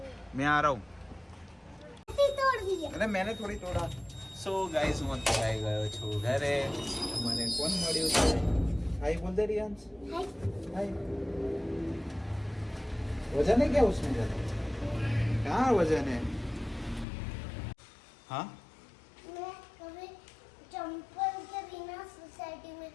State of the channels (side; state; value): right; drops out; at 17.1 s